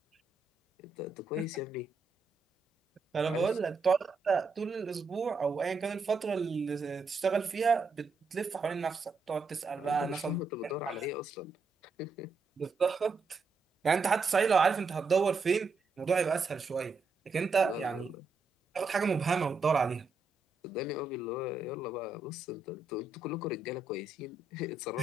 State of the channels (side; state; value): left; quieter; 3.9 dB